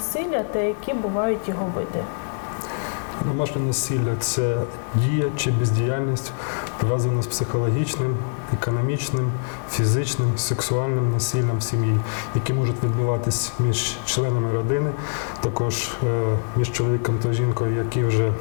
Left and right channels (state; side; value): silent; right; digital silence